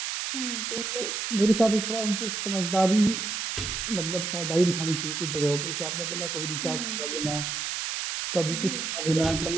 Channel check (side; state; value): right; noise; hiss, 3 dB below the sound